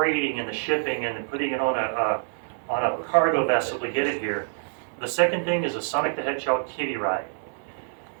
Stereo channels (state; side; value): silent; left; digital silence